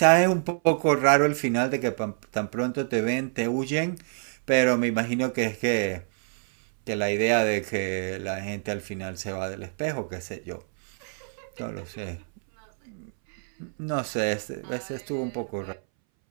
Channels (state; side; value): silent; left; 60 dB below the other